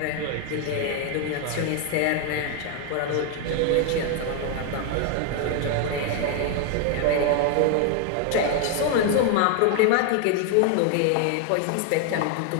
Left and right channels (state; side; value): different; both; correlation 0.01